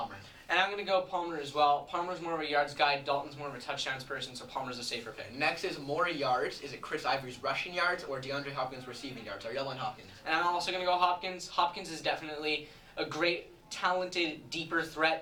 And I'm going to go Palmer as well. Palmer's more of a yards guy, Dalton's more of a touchdowns person, so Palmer's a safer pick. Next is more yards. Is it Chris Ivory's rushing yards or DeAndre Hopkins' receiving yards? Ariel went Hopkins. And I'm also going to go Hopkins. Hopkins is definitely a great, talented, deeper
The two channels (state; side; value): identical; both; correlation 1.00